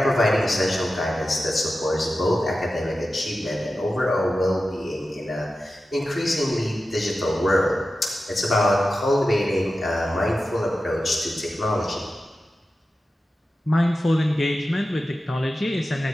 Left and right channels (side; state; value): both; normal; correlation 0.93